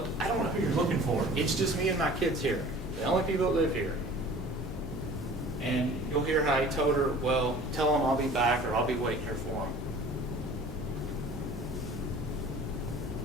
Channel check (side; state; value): both; normal; correlation 0.45